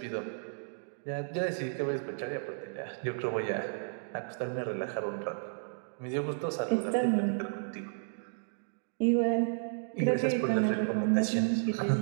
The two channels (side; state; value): left; silent; digital silence